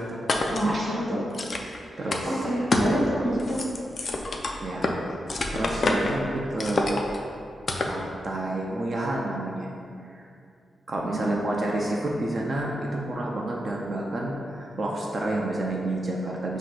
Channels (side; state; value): both; normal; correlation 0.86